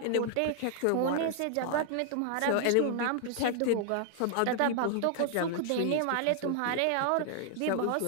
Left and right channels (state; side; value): different; both; correlation 0.00